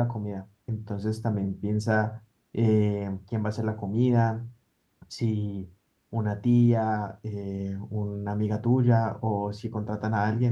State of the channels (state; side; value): identical; both; correlation 1.00